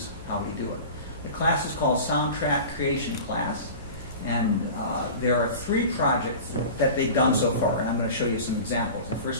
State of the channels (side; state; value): both; inverted; correlation -0.35